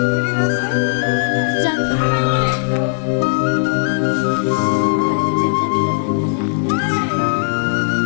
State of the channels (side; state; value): right; silent; 66 dB below the other